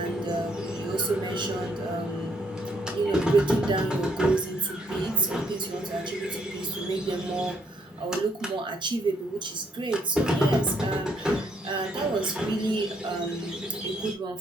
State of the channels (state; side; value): normal; both; correlation 0.70